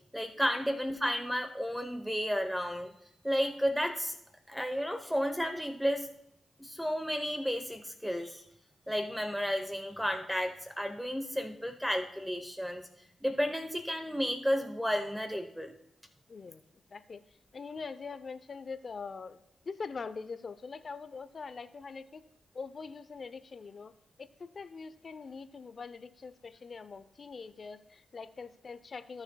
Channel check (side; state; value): both; normal; correlation 0.97